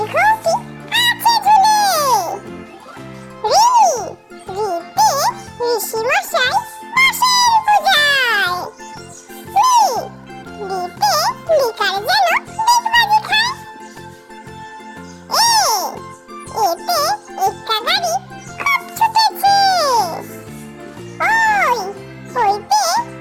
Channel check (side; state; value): both; identical; correlation 1.00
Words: আছে ঝুলে। ঋ ঋতে ঋষি মশাই বসেন পূজায়। রিতে লিকার যেন ডিগবাজি খায়। এতে একটা গাড়ি খুব ছুটেছে। ওইতে